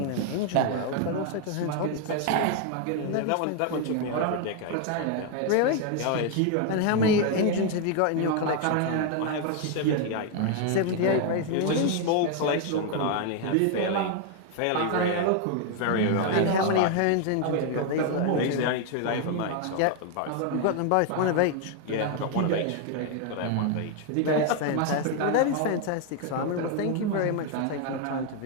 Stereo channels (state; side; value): different; both; correlation 0.00